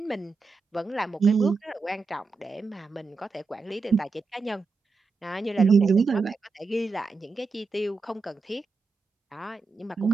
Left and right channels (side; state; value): left; quieter; 4.3 dB